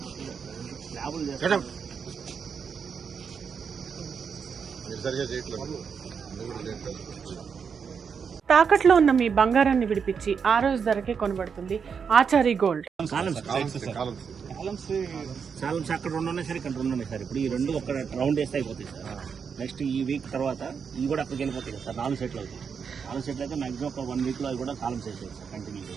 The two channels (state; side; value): quieter; left; 6.4 dB